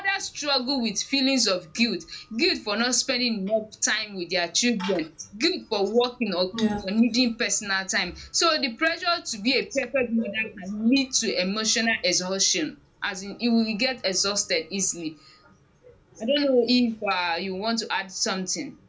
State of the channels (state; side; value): identical; both; correlation 1.00